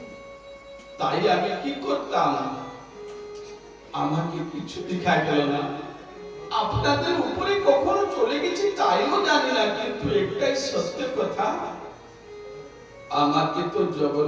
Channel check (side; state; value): both; identical; correlation 1.00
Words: তাই আমি কি করতাম, আমাকে কিছু দেখা গেল না। আপনাদের উপরে কখনো চলে গেছি তাইও জানি না, কিন্তু একটাই সত্য কথা, আমাকে তো